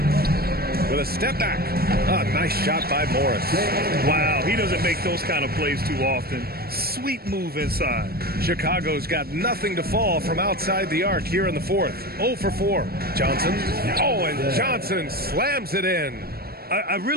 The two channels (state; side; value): late; left; 0.45 ms